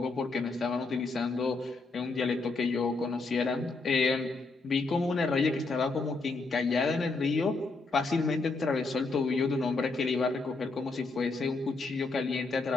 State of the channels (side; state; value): right; quieter; 3.7 dB